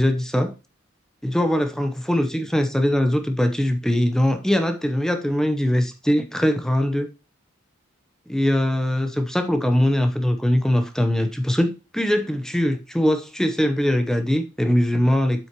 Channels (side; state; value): both; normal; correlation 0.95